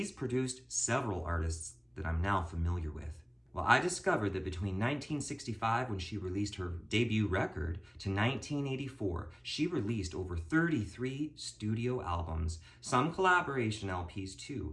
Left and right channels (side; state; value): both; identical; correlation 1.00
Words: produced several artists that I'm now familiar with. Well, I discovered that between 1965, when she released her debut record, to 1984, she released over 33 studio albums, some collaboration LPs